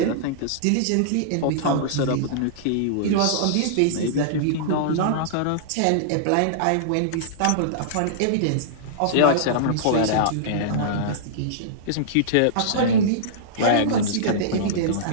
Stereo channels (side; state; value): both; different; correlation -0.03